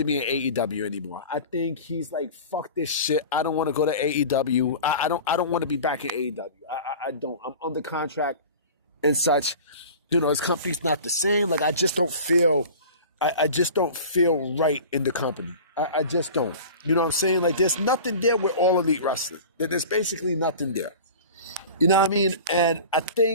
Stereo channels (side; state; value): both; inverted; correlation -0.37